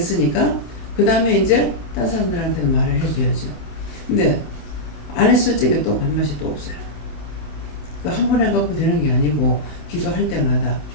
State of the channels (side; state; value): right; late; 27 ms